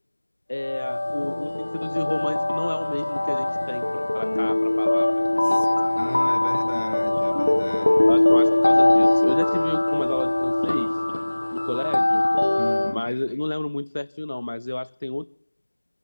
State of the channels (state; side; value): inverted; both; correlation -1.00